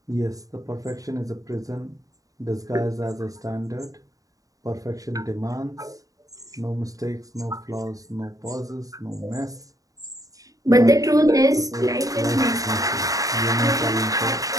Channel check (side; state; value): left; late; 0.17 ms